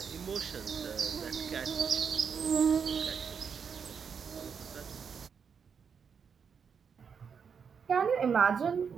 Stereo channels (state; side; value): quieter; left; 6.5 dB